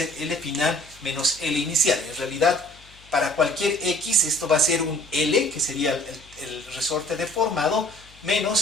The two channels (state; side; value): noise; left; hum, 25 dB below the sound